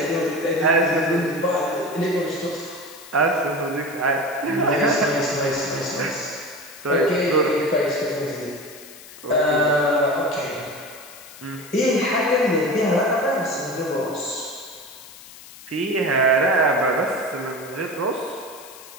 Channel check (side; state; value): left; noise; hiss, 18 dB below the sound